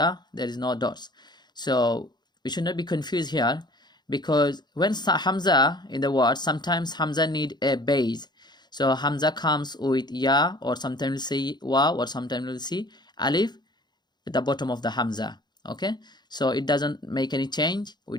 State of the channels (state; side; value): late; right; 0.21 ms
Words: there is no dots. So we should not be confused here, because when hamza in the word, sometimes hamza need a base. So hamza comes with ya, or sometimes we'll see wa, or sometimes we'll see alif at the bottom of the hamza. Okay, so it doesn't make any change. We